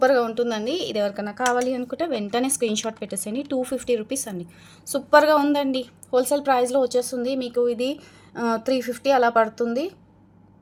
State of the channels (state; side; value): identical; both; correlation 1.00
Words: ఉంటుందండి. ఇది ఎవరికైనా కావాలి అనుకుంటే వెంటనే స్క్రీన్ షాట్ పెట్టేసేయండి. 250 రూపీస్ అండి, సూపర్గా ఉందండి. హోల్సేల్ ప్రైస్లో వచ్చేస్తుంది మీకు. ఇది 350 అలా పడుతుంది.